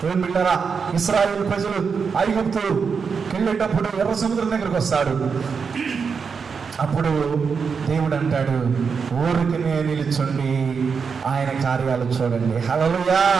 దేవుని బిడ్డలారా, ఇశ్రాయేలు ప్రజలు ఐగుప్తుకి వెళ్ళేటప్పుడు ఎర్ర సముద్రం దగ్గరికి వస్తాడు. అప్పుడు దేవుడు అంటాడు, ఊరికినే నిలుచుండి ఆయన కార్యాలు చూడండి. హల్లెలూయా.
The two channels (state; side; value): quieter; left; 5.8 dB